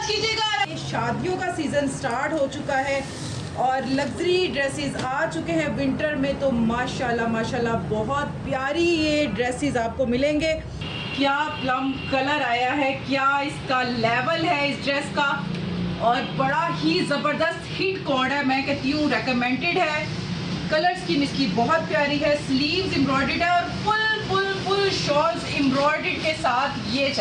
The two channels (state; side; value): identical; both; correlation 1.00